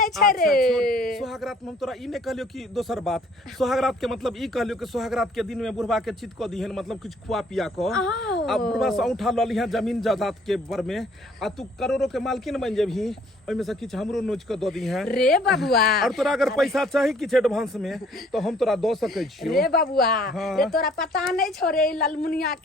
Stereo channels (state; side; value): normal; both; correlation 0.59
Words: छै रे। सुहागरात में हम तोरा ई ने कहलियो कि दोसर बात, सुहागरात के मतलब ई कहलियो कि सुहागरात के दिन में बुढ़वा के चित क दिहन, मतलब कुछ खुआ पिया क आ बुढ़वा से उठा ल लिहन जमीन जायदाद के बर में, आ तू करोड़ों के मालकिन बन जेबही, ओइ में से किछ हमरो नोच के द दिहन रे बबुआ। और तोरा अगर पैसा चाही किछ एडवांस में तो हम तोरा दो सकै छियो रे बबुआ। रे तोरा पता नहीं छो रे ललमुनिया